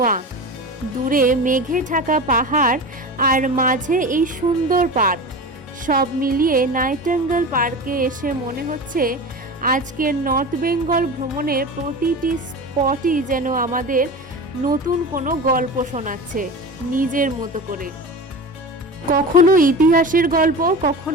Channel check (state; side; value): normal; both; correlation 0.30